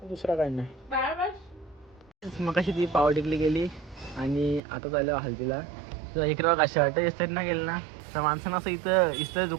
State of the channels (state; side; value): drops out; left; at 4.6 s